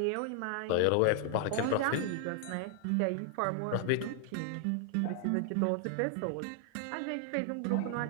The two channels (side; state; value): both; different; correlation 0.00